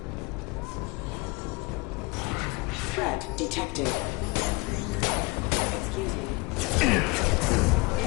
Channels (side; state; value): right; quieter; 26.3 dB